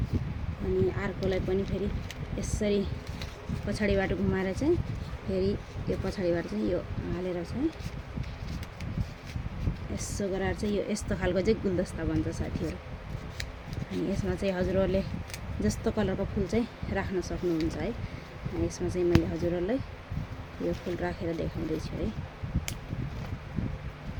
अर्कोलाई पनि फेरि यसरी पछाडिबाट घुमाएर चाहिँ फेरि यो पछाडिबाट चाहिँ यो हालेर चाहिँ यसो गरेर चाहिँ यो यस्तो खालको चाहिँ गुलदस्ता बन्छ साथीहरु। अनि यसमा चाहिँ हजुरहरुले जस्तो कलरको फूल चाहिँ राख्न सक्नुहुन्छ है। अनि यसमा चाहिँ मैले हजुरहरुलाई यो फूल राखेर देखाउँदै छु है।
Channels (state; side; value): identical; both; correlation 1.00